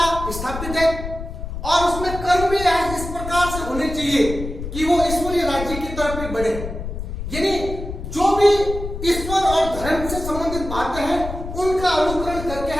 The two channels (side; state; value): left; noise; rumble, 7 dB below the sound